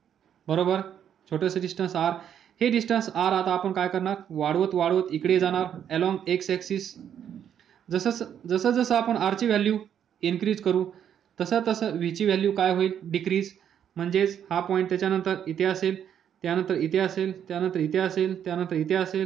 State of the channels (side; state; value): left; quieter; 9.1 dB